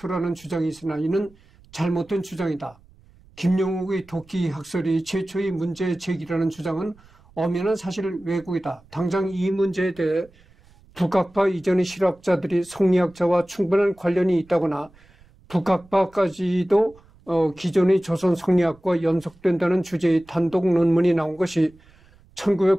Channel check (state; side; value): noise; right; rumble, 28 dB below the sound